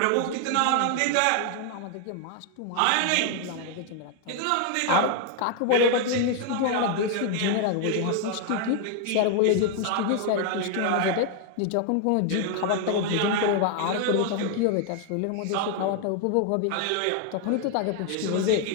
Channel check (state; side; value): different; both; correlation 0.00